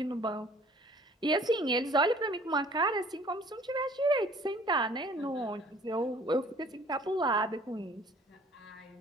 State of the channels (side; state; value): both; normal; correlation 0.53